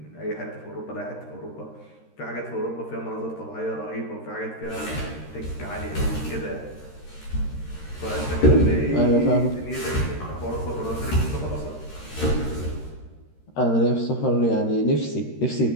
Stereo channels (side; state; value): right; late; 13 ms